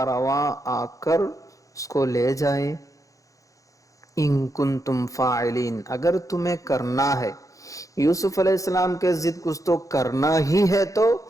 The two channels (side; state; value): right; late; 0.16 ms